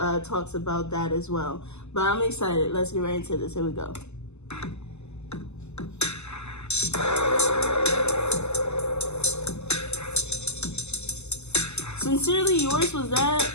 about that as well. But I'm excited. Let's get right into this. Here we go. Sincerely Yours, was that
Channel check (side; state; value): right; late; 0.82 ms